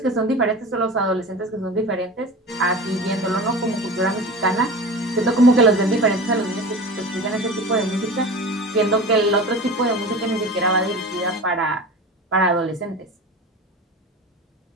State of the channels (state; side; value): normal; both; correlation 0.33